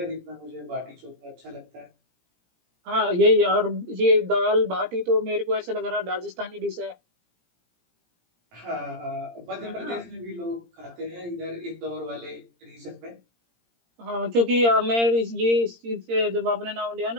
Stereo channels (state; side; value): late; left; 17 ms